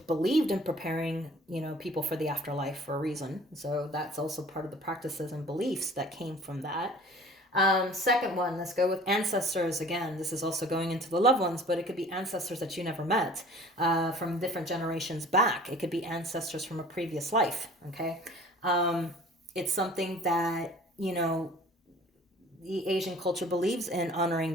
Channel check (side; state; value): both; normal; correlation 0.48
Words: in preparing, people for the afterlife for a reason. So that's also part of the practices and beliefs that came from that. Second one, let's go with ancestors. Again, this is also going into the loved ones, but it could be ancestors that you never met from different generations back. It could be ancestors from a previous life, okay? It's something that, the Asian culture believes in honoring